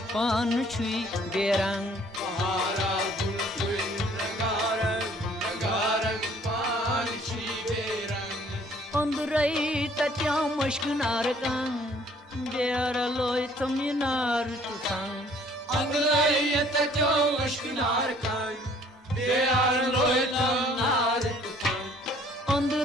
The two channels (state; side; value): normal; both; correlation 0.58